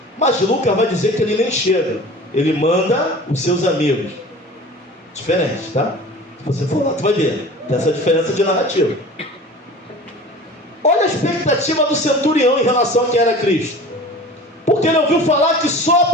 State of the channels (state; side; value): normal; both; correlation 0.39